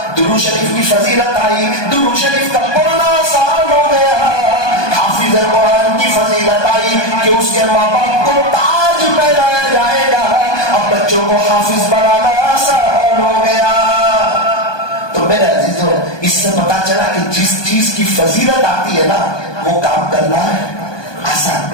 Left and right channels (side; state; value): right; late; 1.2 ms